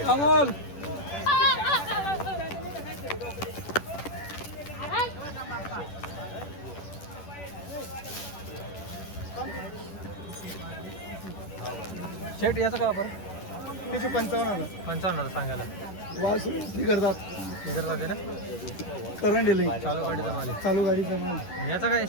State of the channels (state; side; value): late; right; 10 ms